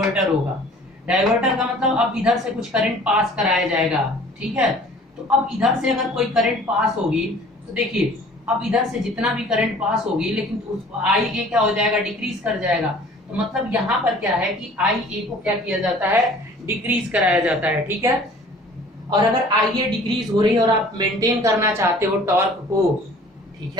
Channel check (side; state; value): both; normal; correlation 0.49